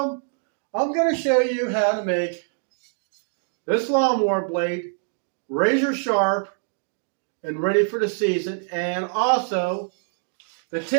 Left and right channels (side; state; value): left; silent; digital silence